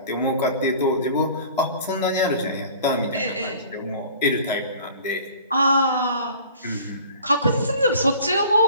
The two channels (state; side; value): inverted; both; correlation -0.46